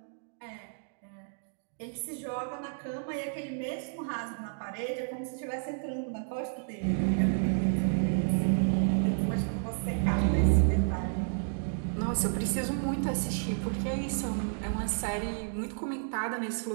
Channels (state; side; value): silent; left; digital silence